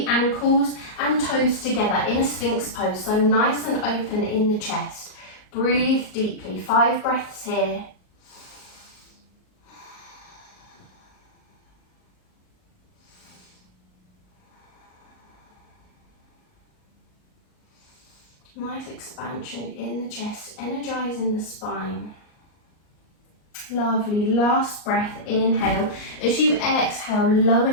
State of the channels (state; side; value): late; right; 38 ms